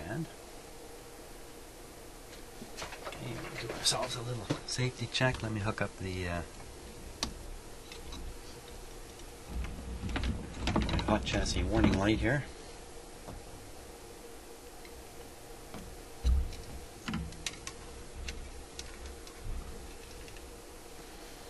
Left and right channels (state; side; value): identical; both; correlation 1.00